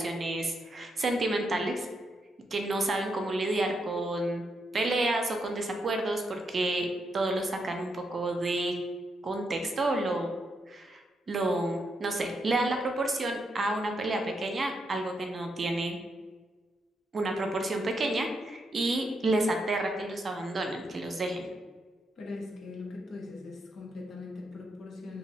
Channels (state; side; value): normal; both; correlation 0.81